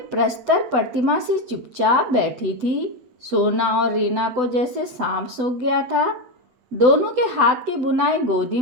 प्रस्तर प्रतिमा से चुपचाप बैठी थी। सोना और रीना को जैसे सांप सूंघ गया था। दोनों के हाथ की बुनाई गोदी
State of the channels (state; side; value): late; left; 8.0 ms